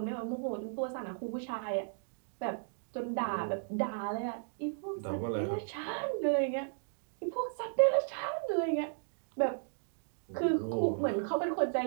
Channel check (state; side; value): silent; left; digital silence